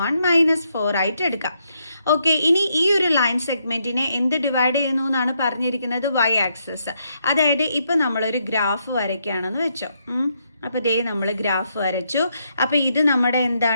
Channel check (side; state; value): both; inverted; correlation -0.77